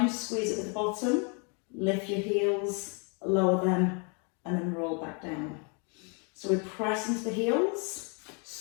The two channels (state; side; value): quieter; right; 36.2 dB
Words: squeeze it at the bottom, lift your heels, lower them, and then roll back down. So we press into the heels,